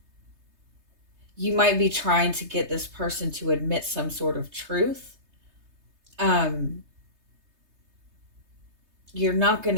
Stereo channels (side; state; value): left; late; 3.3 ms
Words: You might be trying to get this person to admit some sort of truth. You're not going